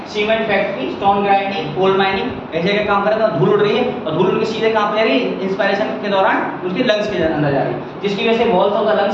cement factory, stone grinding, coal mining, ऐसे जगह काम कर रहे हैं, धूल उड़ रही है और धूल उनके सीधे कहाँ पे जा रही है, इंस्पायरेशन के दौरान उनके लंग्स के अंदर जा रही है, जिसकी वजह से walls of the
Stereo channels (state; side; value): identical; both; correlation 1.00